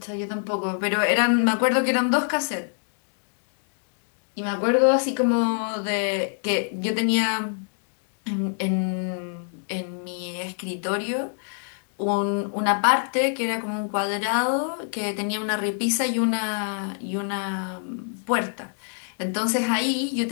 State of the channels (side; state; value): right; silent; 61 dB below the other